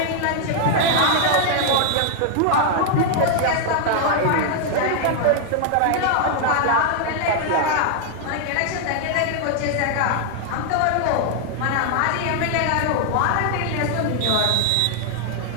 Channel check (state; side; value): different; both; correlation 0.00